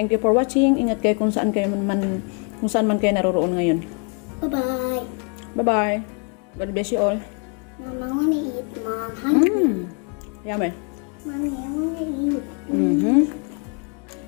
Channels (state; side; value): quieter; right; 37.8 dB